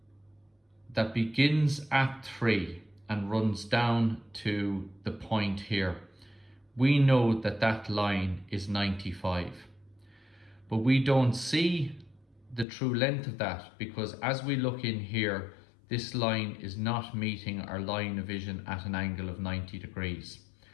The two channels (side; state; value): right; drops out; at 12.7 s